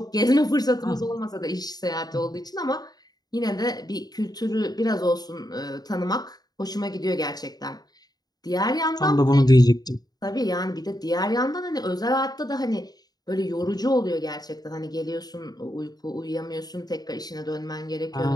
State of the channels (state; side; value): late; right; 0.19 ms